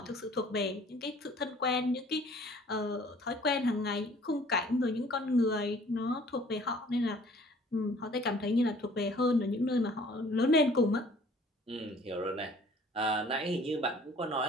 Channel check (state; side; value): normal; both; correlation 0.53